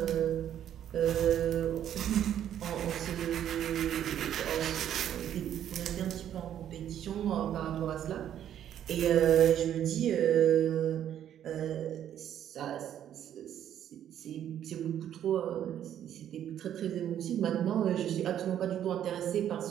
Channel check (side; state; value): left; quieter; 10.4 dB